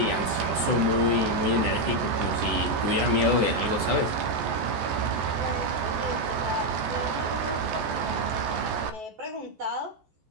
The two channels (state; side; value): late; left; 14 ms